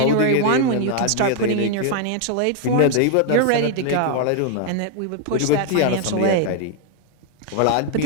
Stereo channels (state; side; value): different; both; correlation 0.00